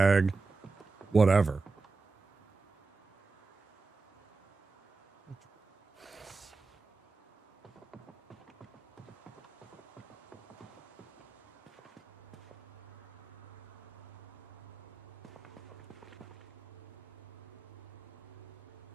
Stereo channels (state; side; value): quieter; left; 4.0 dB